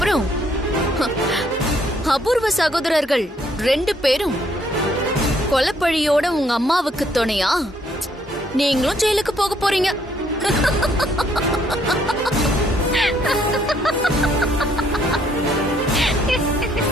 அபூர்வ சகோதரர்கள் 2 பேரும் கொலைப்பழியோட உங்க அம்மாவுக்கு துணையா நீங்களும் ஜெயிலுக்கு போக போறீங்க.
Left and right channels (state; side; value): normal; both; correlation 0.68